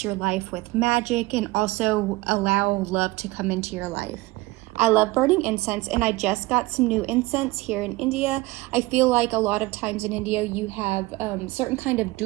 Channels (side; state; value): left; quieter; 20.7 dB